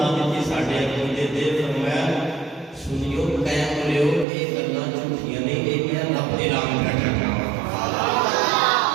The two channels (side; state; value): left; drops out; at 4.2 s